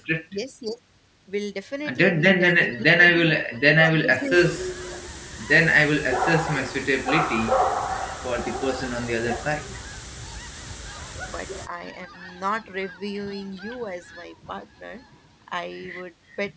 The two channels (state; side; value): identical; both; correlation 1.00